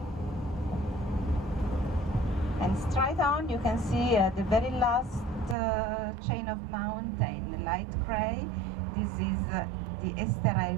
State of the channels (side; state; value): left; drops out; at 5.6 s